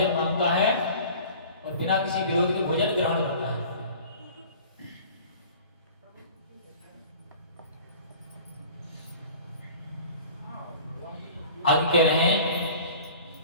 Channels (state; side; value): inverted; both; correlation -0.44